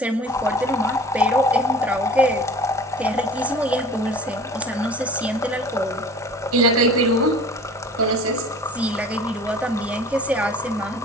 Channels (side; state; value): both; normal; correlation 0.43